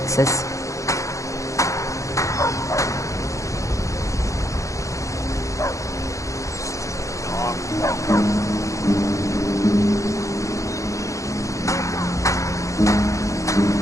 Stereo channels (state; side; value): late; right; 0.15 ms